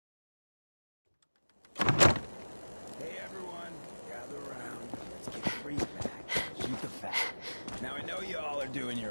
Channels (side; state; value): both; inverted; correlation -1.00